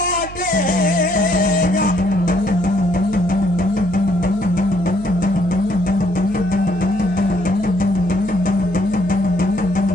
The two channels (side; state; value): right; noise; hum, 14 dB below the sound